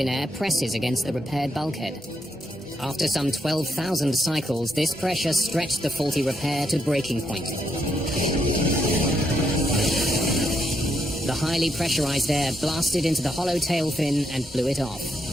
air presses against the repaired bulkhead. After some 12,000 cycles, this pressure stretched the faulty repair to breaking point. The highly pressurized air blasted into the hollow tail fin and blew it off.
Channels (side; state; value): both; normal; correlation 0.79